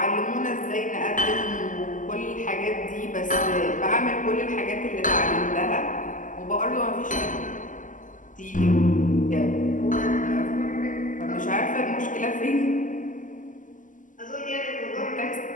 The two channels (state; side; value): late; right; 0.38 ms